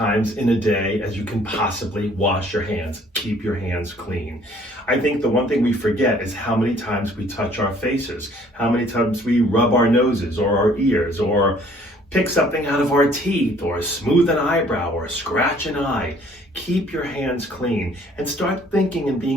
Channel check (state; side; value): normal; both; correlation 0.58